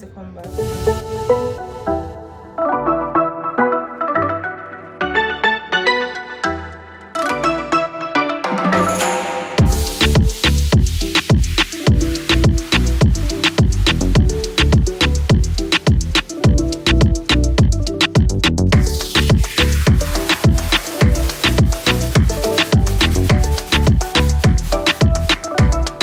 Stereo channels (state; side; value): identical; both; correlation 1.00